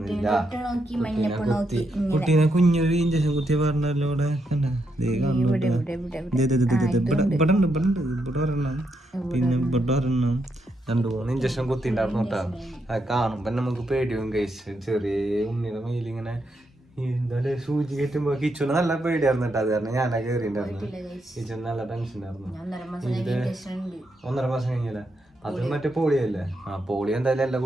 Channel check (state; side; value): normal; both; correlation 0.81